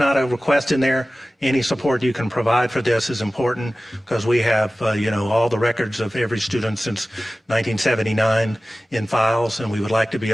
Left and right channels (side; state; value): both; normal; correlation 0.96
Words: a request in there. Any support you can provide for this is important because we have, all the records of every student since 1979 in files, and we would like to be